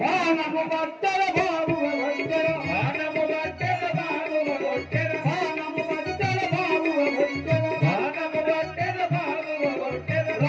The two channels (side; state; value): both; identical; correlation 1.00